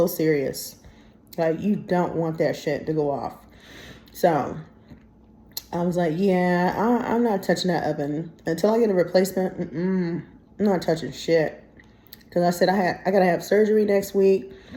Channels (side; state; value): both; identical; correlation 1.00